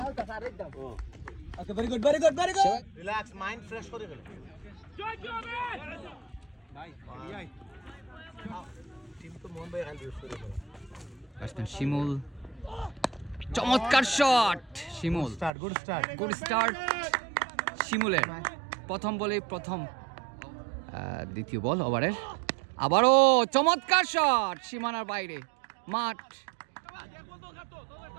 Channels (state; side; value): drops out; left; at 15.5 s